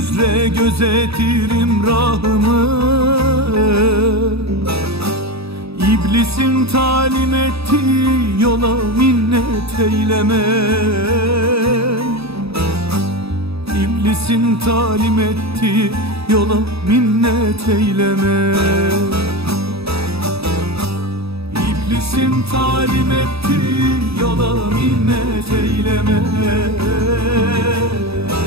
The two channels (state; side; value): late; left; 0.78 ms